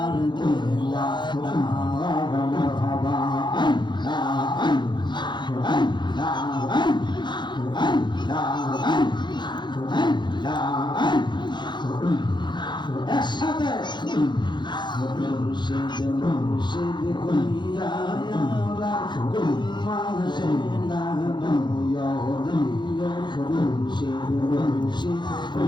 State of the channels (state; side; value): late; right; 0.22 ms